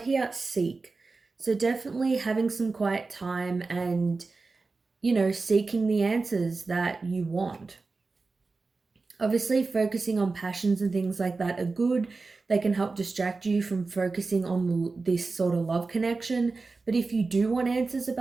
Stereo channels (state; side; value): quieter; left; 3.9 dB